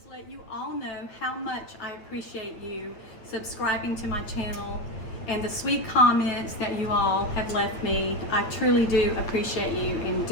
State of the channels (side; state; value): right; late; 8.8 ms